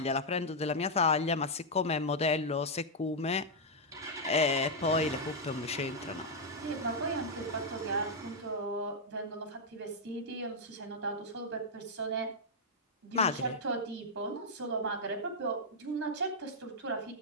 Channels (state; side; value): normal; both; correlation -0.04